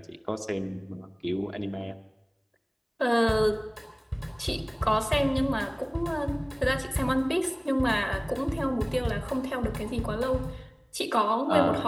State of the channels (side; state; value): both; identical; correlation 1.00